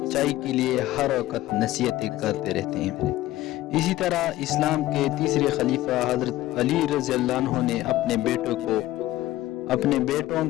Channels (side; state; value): right; quieter; 15.8 dB